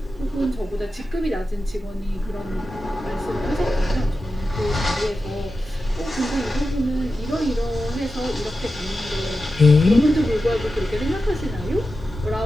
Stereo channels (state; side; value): normal; both; correlation 0.92